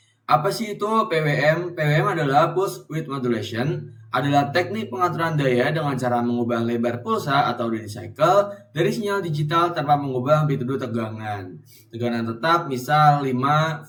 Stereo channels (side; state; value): both; identical; correlation 1.00